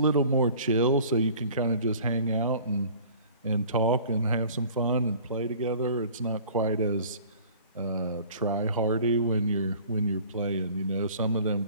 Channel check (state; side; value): inverted; both; correlation -0.48